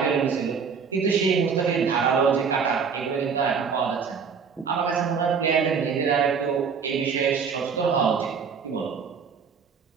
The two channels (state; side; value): quieter; left; 6.1 dB